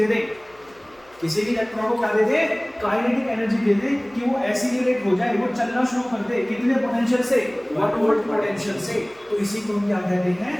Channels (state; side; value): noise; left; hum, 30 dB below the sound